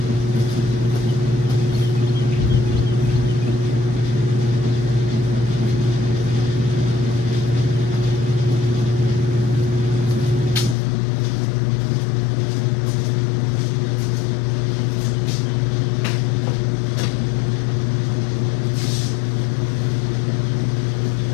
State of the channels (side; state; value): right; drops out; at 10.8 s